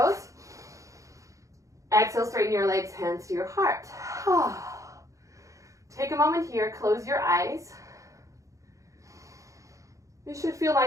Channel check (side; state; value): left; late; 0.15 ms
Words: Exhale, straighten your legs, hands to your heart. Take a moment here, close your eyes. You should feel